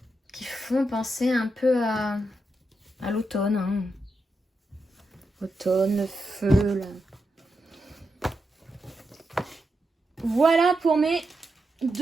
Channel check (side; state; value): both; normal; correlation 0.86